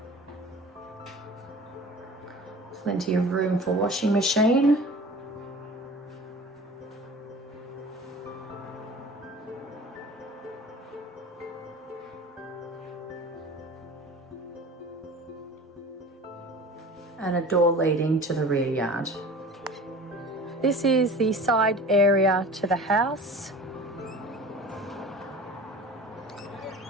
Plenty of room for washing machine. And a door leading to the rear yard. This is the side area to the house.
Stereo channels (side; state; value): both; normal; correlation 0.40